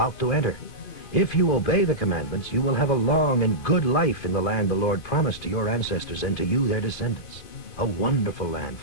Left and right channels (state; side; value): late; right; 2.6 ms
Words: to enter. If you obey the commandments, you will have a long and good life in the land the Lord promised to your ancestors and to you, their descendants. A wonderful land